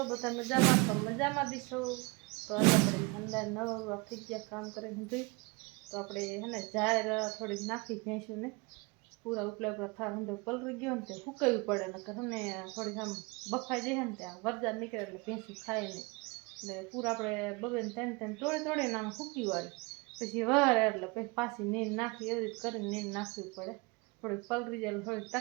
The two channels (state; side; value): quieter; left; 27.1 dB